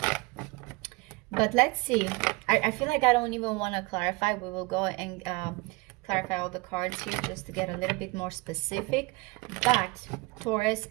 But let's see. I feel like I don't even want to clarify. We will go and clarify all the cards here just to get a little bit more specific. But Taurus,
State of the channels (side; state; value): left; quieter; 25.4 dB